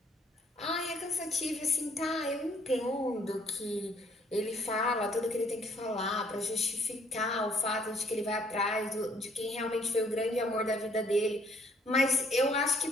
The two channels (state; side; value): normal; both; correlation 0.64